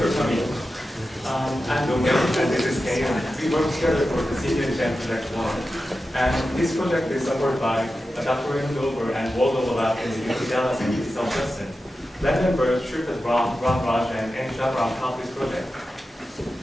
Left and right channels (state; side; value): normal; both; correlation 0.92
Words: for coming. I'm Dong and this is Kay. We work together for the Senior Design Project 1. And this project is supported by Dr. Dover and Waldo Lab in the UC Dallas and UC South Boston. Lab members Shripad Ram, Raj, and Shahram helped this project.